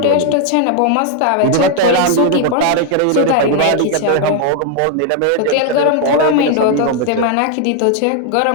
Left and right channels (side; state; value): both; different; correlation 0.00